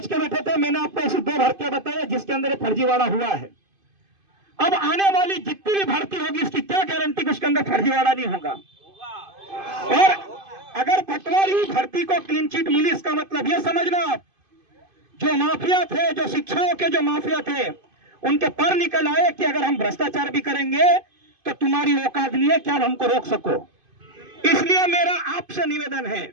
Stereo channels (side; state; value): left; late; 2.5 ms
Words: के बैठे थे, मैंने आपको ऐसी 2 भर्तियां बताई जिसके अंदर फर्जीवाड़ा हुआ है। अब आने वाली जितनी भी भर्ती होगी इसकी क्या गारंटी कि उसके अंदर फर्जीवाड़ा नहीं होगा। और अगर पटवारी भर्ती को क्लीन चिट मिली, इसका मतलब यह समझना आप, जो माफिया थे, जो शिक्षाओं के जो माफिया थे, उनके पर निकल आए कि अगर हम भ्रष्टाचार भी करेंगे तो तुम्हारी औकात नहीं है कि आप हमको रोक सको। इसलिए मेरा आपसे निवेदन है,